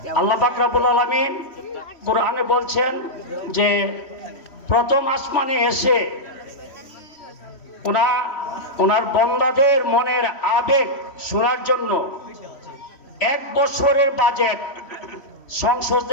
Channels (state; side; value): late; right; 3.1 ms